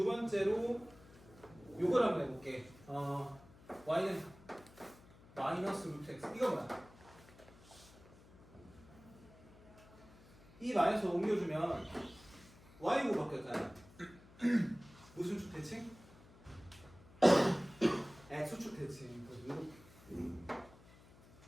번째로 요걸 한번 해볼게. y는 마이너스 루트 x. 이거 뭐야? 이 마이너스 옮겨주면 y고 바뀌었잖아. 무슨 축 대칭? x축 대칭.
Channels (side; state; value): left; noise; hum, 23 dB below the sound